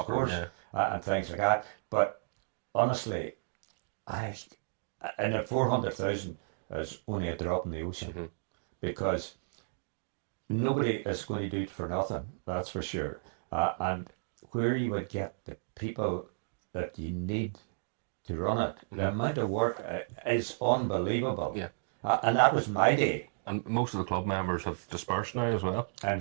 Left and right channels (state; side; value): silent; left; digital silence